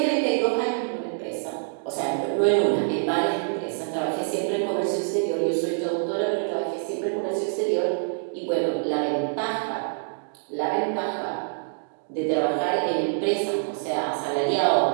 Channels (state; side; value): silent; left; digital silence